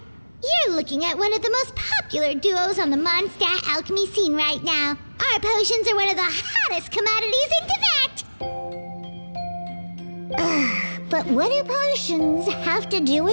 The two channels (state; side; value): inverted; both; correlation -1.00